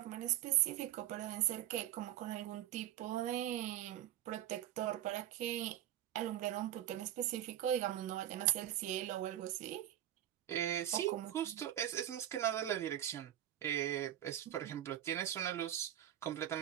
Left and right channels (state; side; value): quieter; left; 12.2 dB